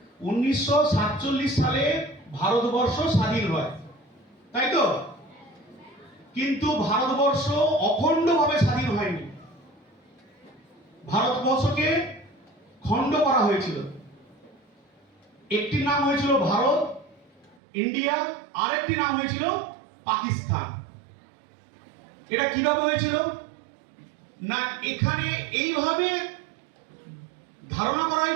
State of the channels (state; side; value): drops out; left; at 17.6 s